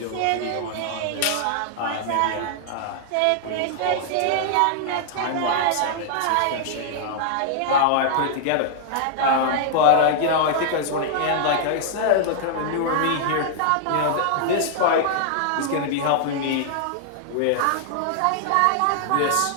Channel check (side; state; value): both; different; correlation -0.01